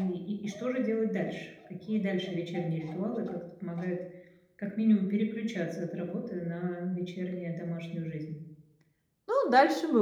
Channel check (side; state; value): both; identical; correlation 1.00